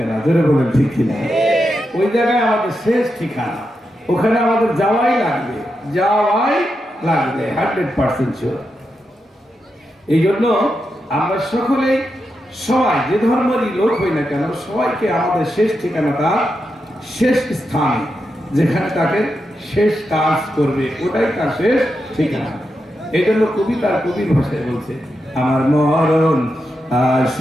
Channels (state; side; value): normal; both; correlation 0.86